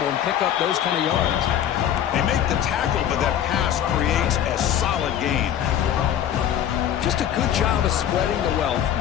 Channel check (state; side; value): quieter; right; 10.3 dB